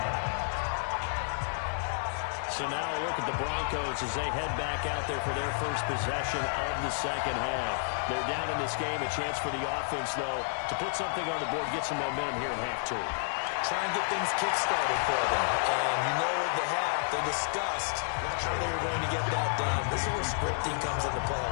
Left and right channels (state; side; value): silent; right; digital silence